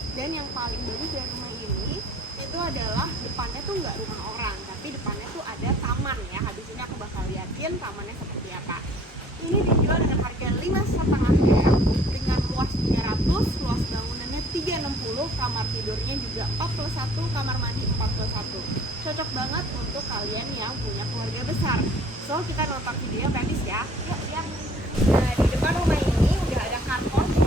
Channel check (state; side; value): normal; both; correlation 0.54